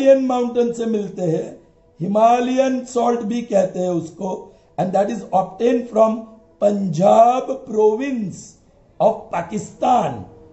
mountain से मिलते हैं, Himalayan salt भी कहते हैं उसको, and that is obtain from Punjab province of Pakistan.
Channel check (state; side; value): identical; both; correlation 1.00